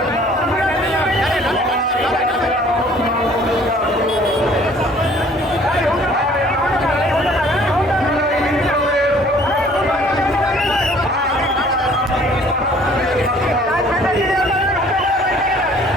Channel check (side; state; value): both; normal; correlation 0.55